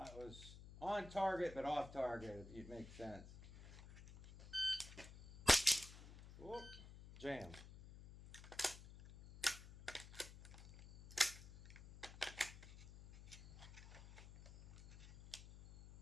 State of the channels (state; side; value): noise; left; hum, 15 dB below the sound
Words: that was on target but off target, if it makes sense. Whoop, jam.